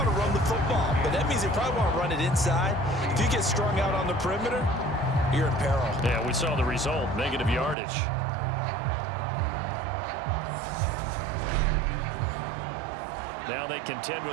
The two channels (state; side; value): drops out; left; at 7.8 s